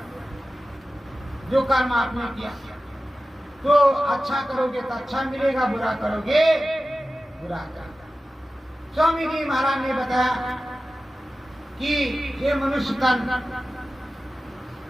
जो कर्म आपने किया तो अच्छा करोगे तो अच्छा मिलेगा, बुरा करोगे बुरा करोगे। स्वामी जी महाराज ने बताया कि ये मनुष्य तन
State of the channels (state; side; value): normal; both; correlation 0.95